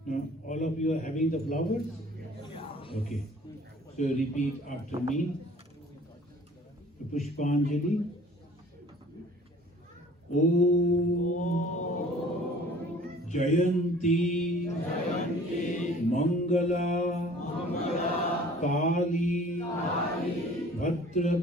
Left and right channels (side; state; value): both; normal; correlation 0.50